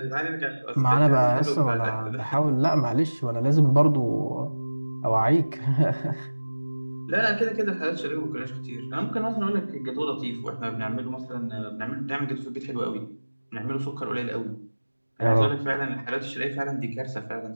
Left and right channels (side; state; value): both; inverted; correlation -1.00